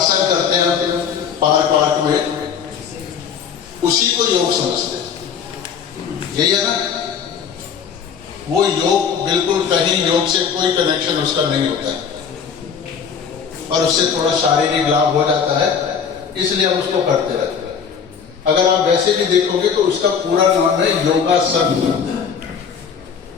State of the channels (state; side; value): quieter; right; 6.9 dB